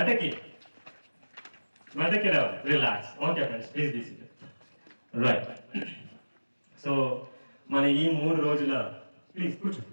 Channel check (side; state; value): both; inverted; correlation -1.00